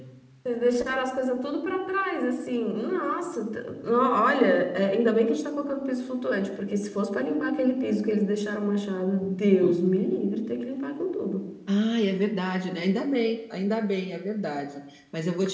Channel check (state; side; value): identical; both; correlation 1.00